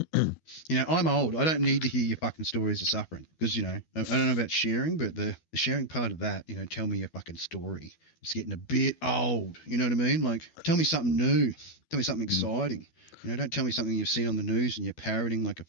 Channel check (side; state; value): right; late; 12 ms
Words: I'm old. I don't need to hear your fucking stories of suffering because, you know, I don't know about sharing, but the sharing part of that, you know, tell me your fucking story. It's getting a bit old. You know what I mean? Like, tell me something new. Tell me something exciting. You know, don't tell me something you've seen on the news and you're parroting like a